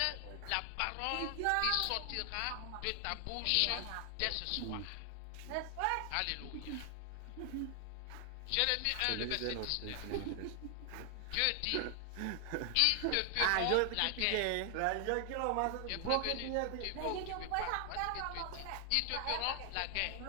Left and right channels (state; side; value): different; both; correlation 0.00